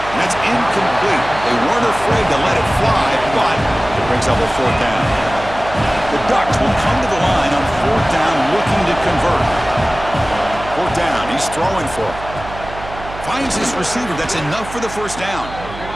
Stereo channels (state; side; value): noise; right; hum, 13 dB below the sound